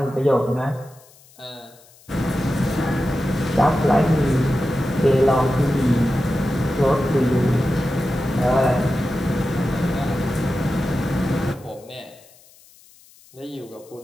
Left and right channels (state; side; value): noise; left; hiss, 27 dB below the sound